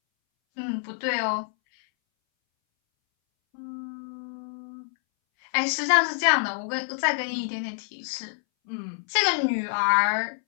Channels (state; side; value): silent; right; 60 dB below the other